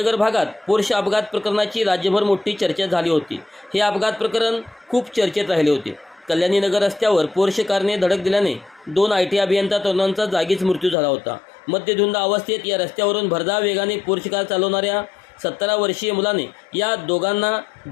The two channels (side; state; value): right; drops out; at 11.0 s